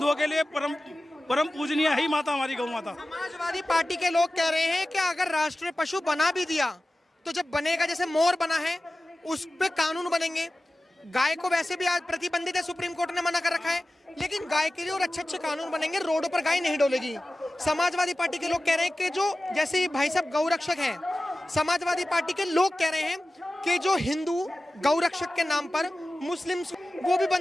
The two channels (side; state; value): both; normal; correlation 0.96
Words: के लिए परम पूजनीय है ही माता, हमारी गौ माता। समाजवादी पार्टी के लोग कह रहे हैं कि अगर राष्ट्रीय पशु बना भी दिया तो जब बनेगा, जैसे मोर बना है, उस पे कानून बनेंगे। गाय को वैसे भी आज प्रतिबंधित है, सुप्रीम कोर्ट ने मना कर रखा है, लेकिन गाय के लिए और अच्छे कानून बनेंगे, रोडों पर गाय नहीं डोलेगी। समाजवादी पार्टी के लोग कह रहे हैं कि जो, जैसे भाई साहब गौ रक्षक हैं, समाजवादी पार्टी के लोग कह रहे हैं कि जो हिंदू गौ रक्षक के नाम पर मुस्लिम, वो भी